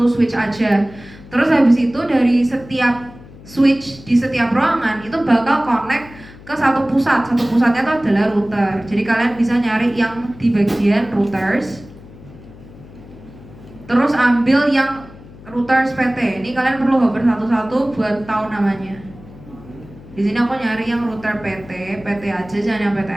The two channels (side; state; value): left; noise; hum, 19 dB below the sound